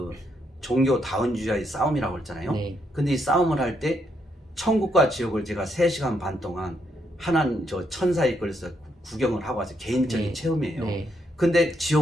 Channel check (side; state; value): both; normal; correlation 0.76